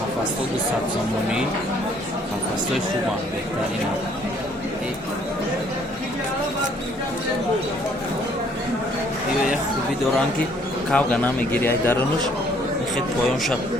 Қафасто 200 сомони қафастои хубам беҳтарин як хуби доранд ки кавга намегири ай дарунуш мехед поёнша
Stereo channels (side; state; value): both; normal; correlation 0.63